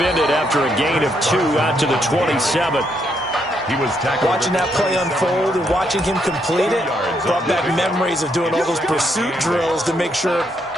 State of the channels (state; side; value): normal; both; correlation 0.76